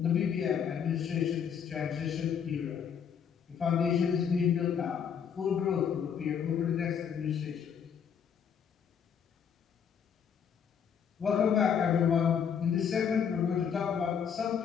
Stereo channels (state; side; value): quieter; right; 7.6 dB